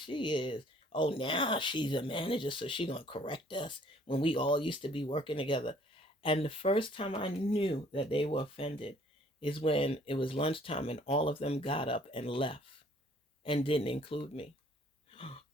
is? Oh, now she's a manager, so she gonna correct us when we all used to be working together. And the first time I knew that they were offended is when it was lunchtime and all of them got up and left and didn't include me.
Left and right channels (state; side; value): normal; both; correlation 0.58